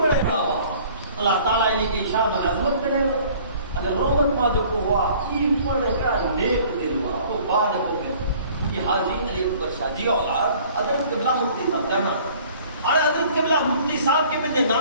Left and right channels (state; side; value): inverted; both; correlation -0.52